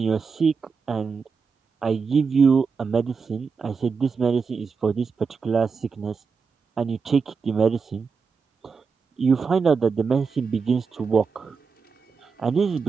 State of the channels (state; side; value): quieter; left; 5.3 dB